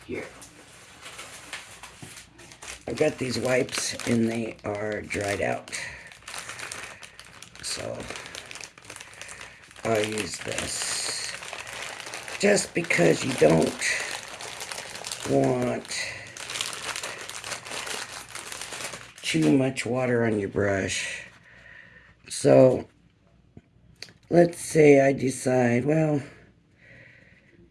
Here. I've got these wipes and they are dried out. So I'll use this. Just because you don't want too much water on your brush. So let's say I decide, well,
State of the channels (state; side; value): identical; both; correlation 1.00